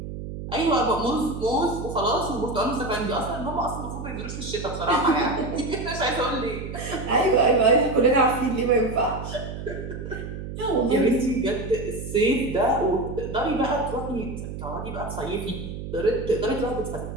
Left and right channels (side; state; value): right; noise; hum, 8 dB below the sound